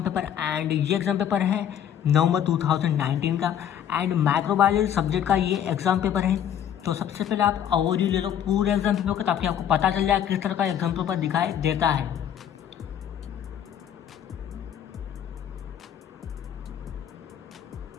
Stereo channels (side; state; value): right; quieter; 9.7 dB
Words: पेपर एंड ये एग्जाम पेपर है नवंबर 2019 का एंड माइक्रोबायोलॉजी सब्जेक्ट का ये एग्जाम पेपर है। तो सबसे पहले आप ओवरव्यू ले लो पूरे एग्जाम पेपर का ताकि आपको पता चल जाए किस तरह का एग्जाम पेपर दिखाई देता है।